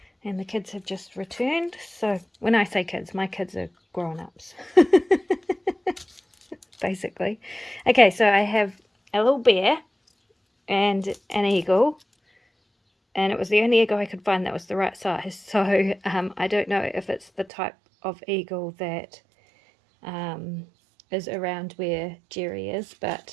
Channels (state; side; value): drops out; left; at 17.4 s